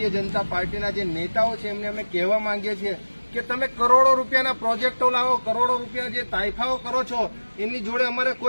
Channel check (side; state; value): both; inverted; correlation -1.00